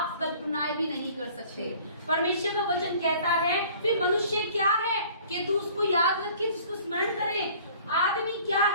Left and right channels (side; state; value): both; inverted; correlation -0.51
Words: कल्पनाएं भी नहीं कर सकते। परमेश्वर का वचन कहता है कि मनुष्य क्या है कि तू उसको याद रखे, उसको स्मरण करे। आदमी क्या